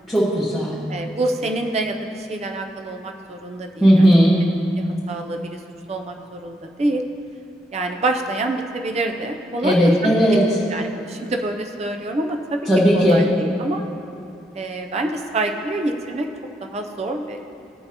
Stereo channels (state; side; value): normal; both; correlation 0.79